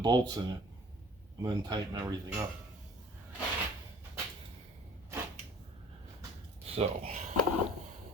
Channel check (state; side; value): normal; both; correlation 0.50